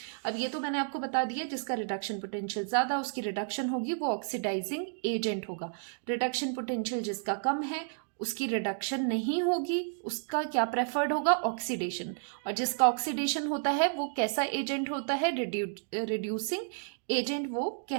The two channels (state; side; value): silent; left; digital silence